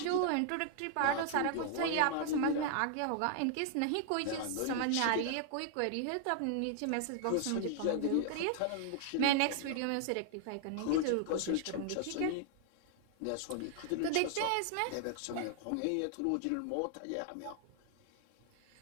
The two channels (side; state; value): both; different; correlation 0.00